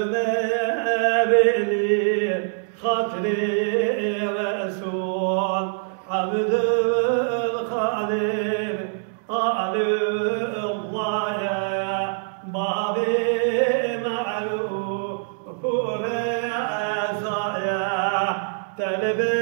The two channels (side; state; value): left; silent; digital silence